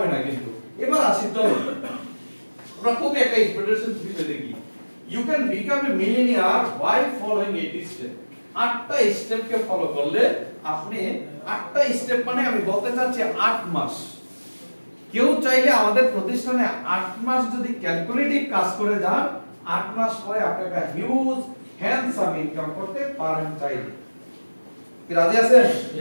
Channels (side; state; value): both; inverted; correlation -1.00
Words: না। কিন্তু এবার আসি তো আমরা খুব একটা ইম্পর্টেন্ট বিষয় দেখি, you can become a millionaire by following 8 step. 8টা স্টেপকে ফলো করলে আপনি 8টা স্টেপ মানে আমি বলতে চাচ্ছি 8 মাস। কেউ চাইলে আমাদের প্রতিষ্ঠানে 8 মাস যদি ক্যালকুলেটিভ কাজ করে যান, 8 মাস পরে আপনি একটা হিউজ হ্যান্ডসাম ইনকাম করতে পারেন চাইলে। কি রাজি আছেন?